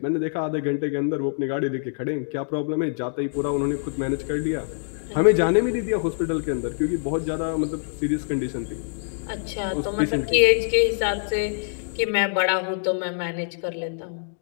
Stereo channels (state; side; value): silent; right; digital silence